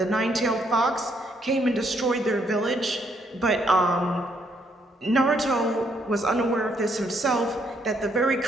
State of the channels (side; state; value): both; normal; correlation 0.72